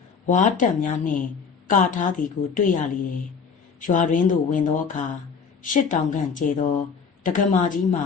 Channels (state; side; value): quieter; right; 5.9 dB